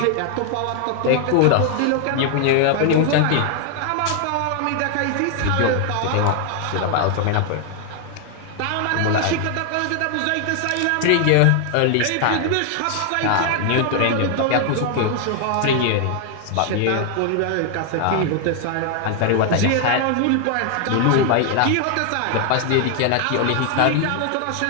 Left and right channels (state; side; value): different; both; correlation 0.00